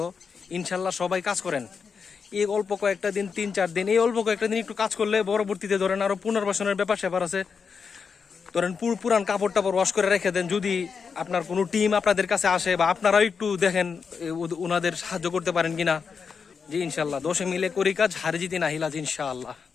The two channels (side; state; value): right; quieter; 5.8 dB